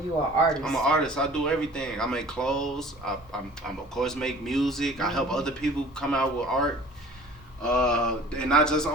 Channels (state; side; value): normal; both; correlation 0.47